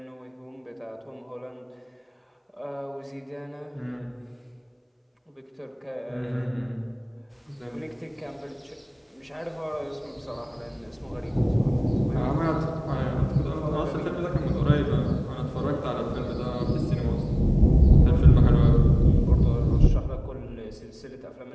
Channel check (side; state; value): both; identical; correlation 1.00